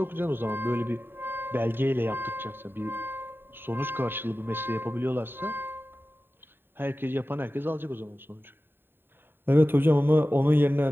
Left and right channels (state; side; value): late; left; 0.10 ms